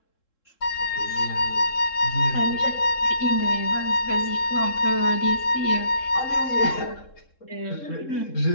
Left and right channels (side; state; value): right; late; 3.7 ms